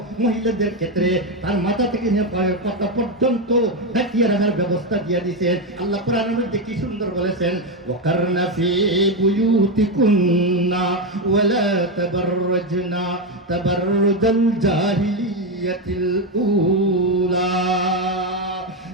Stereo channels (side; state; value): both; normal; correlation 0.08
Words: মহিলাদের ক্ষেত্রে তার মাথা থেকে নিয়ে পায়ের পাতা পর্যন্ত ঢাকিয়ে রাখার ব্যবস্থা দিয়ে দিয়েছেন। আল্লাহ কোরআনের মধ্যে কি সুন্দর বলেছেন, ওয়াকারনা ফি বুয়ুতিকুন্না ওয়ালা তাবাররাজনা তাবাররুজাল জাহিলিয়াতিল উলা।